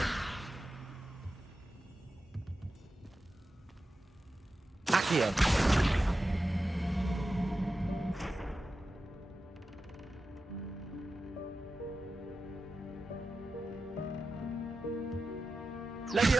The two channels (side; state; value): both; normal; correlation 0.92